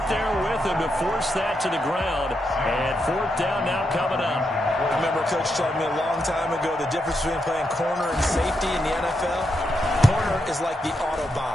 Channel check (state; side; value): normal; both; correlation 0.83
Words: there with him to force that to the ground. And 4th down now coming up. I remember Coach telling me a long time ago the difference between playing corner and safety in the NFL. Corner is like the